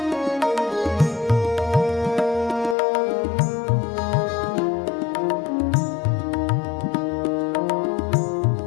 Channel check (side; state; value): right; drops out; at 2.8 s